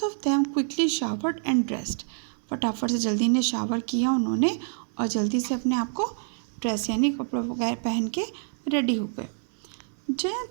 of them quickly showered and dressed, फटाफट से जल्दी ने शावर किया उन्होंने और जल्दी से अपने आप को ड्रेस यानी कपड़े वगैरह पहन के रेडी हो गए।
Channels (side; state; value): left; silent; 60 dB below the other